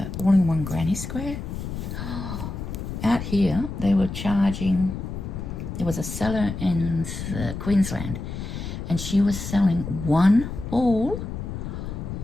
all-in-one granny square, out here they were charging, there was a seller in Queensland, and she was selling one ball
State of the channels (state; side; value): noise; left; rumble, 6 dB below the sound